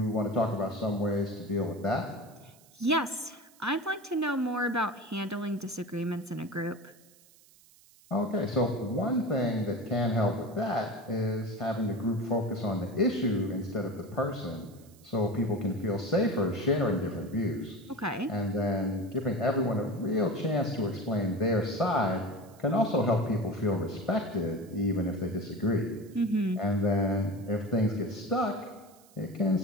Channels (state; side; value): noise; right; hiss, 27 dB below the sound